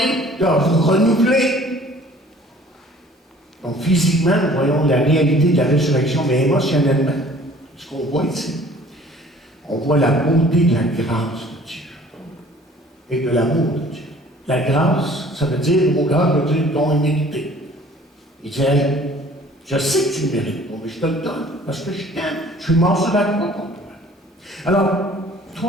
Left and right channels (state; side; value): normal; both; correlation 0.52